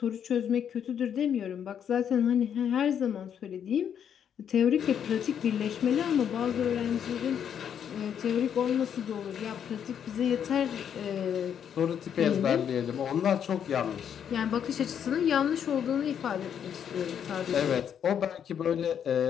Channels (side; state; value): right; quieter; 8.6 dB